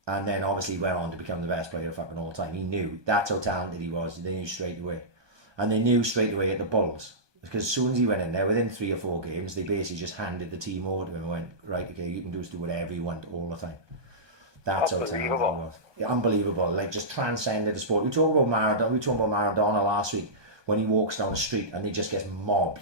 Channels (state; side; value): late; left; 1.2 ms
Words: And then obviously went on to become the best player of fucking all time. He knew. That's how talented he was. They knew straight away. And they knew straight away at the Bulls. Because as soon as he went in there, within 3 or 4 games, they basically just handed the team over to him and went, right, okay, you can do whatever you want all the time. That's how talented he was. Yeah, unbelievable. Like, just transcended the sport. We talked about Maradona last week, when he walks down the street and he just gets